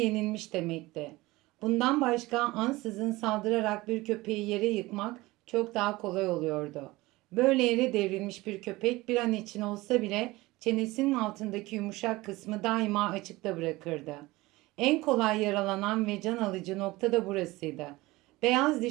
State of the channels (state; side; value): quieter; left; 20.2 dB